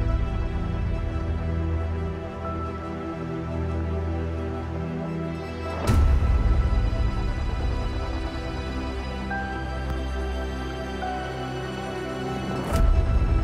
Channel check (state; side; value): identical; both; correlation 1.00